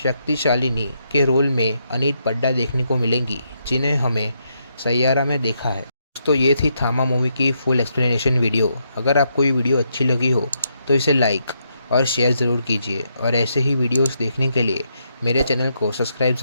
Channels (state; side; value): inverted; both; correlation -0.78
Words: के रोल में अनीत पड्डा देखने को मिलेंगी, जिन्हें हमें सैयारा में देखा है। तो ये थी थामा मूवी की फुल एक्सप्लेनेशन वीडियो। अगर आपको ये वीडियो अच्छी लगी हो तो इसे लाइक और शेयर ज़रूर कीजिए और ऐसे ही वीडियोस देखने के लिए मेरे चैनल को सब्सक्राइब